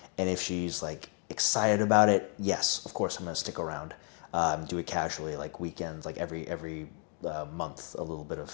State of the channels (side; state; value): right; quieter; 35.6 dB